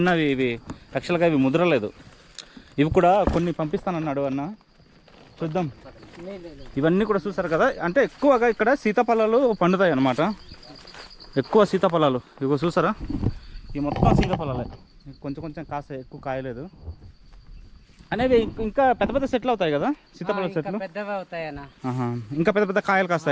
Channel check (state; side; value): identical; both; correlation 1.00